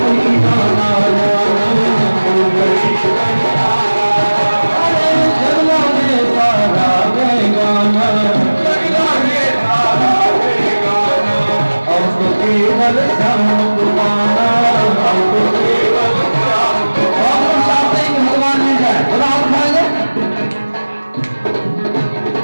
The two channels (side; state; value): both; inverted; correlation -1.00